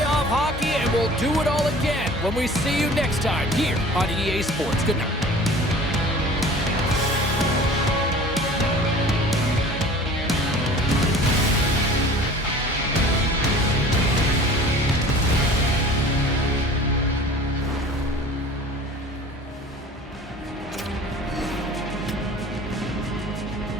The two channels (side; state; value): both; normal; correlation 0.44